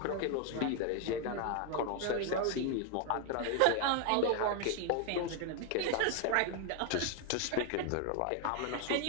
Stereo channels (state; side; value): different; both; correlation 0.01